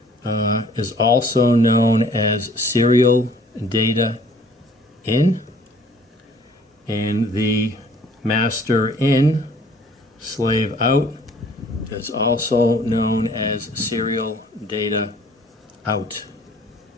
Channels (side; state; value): both; normal; correlation 0.55